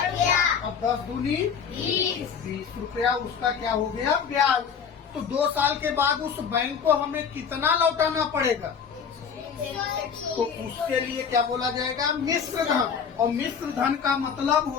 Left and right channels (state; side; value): quieter; right; 6.8 dB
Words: अब 10 दूनी 20 रुपया, उसका क्या हो गया, ब्याज। तो 2 साल के बाद उस बैंक को हमें कितना लौटाना पड़ेगा, तो उसके लिए क्या बोला जाएगा? मिश्र धन। और मिश्र धन का मतलब